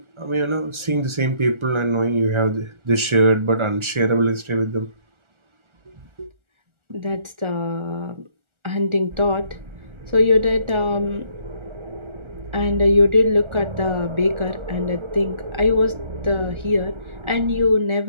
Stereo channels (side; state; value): left; late; 1.4 ms